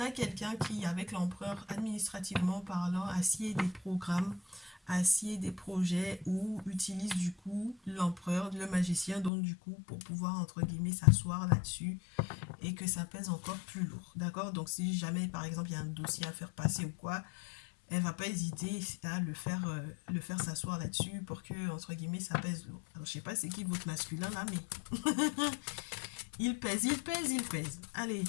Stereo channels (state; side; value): drops out; right; at 9.3 s